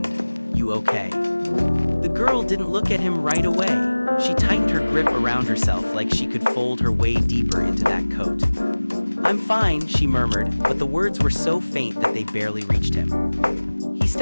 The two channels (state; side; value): inverted; both; correlation -1.00